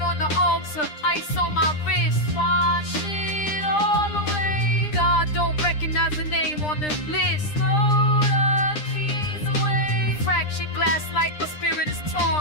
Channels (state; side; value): late; right; 9.9 ms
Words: on the altar, ice on my wrist. Wash it all away. God don't recognize the name on the list. Throw the keys away. Fractured glass like the spirit is